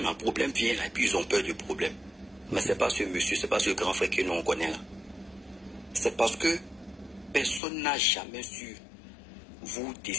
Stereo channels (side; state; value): right; drops out; at 7.6 s